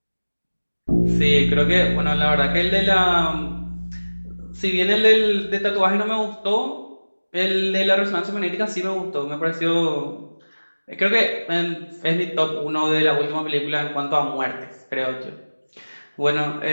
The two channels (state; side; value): inverted; both; correlation -1.00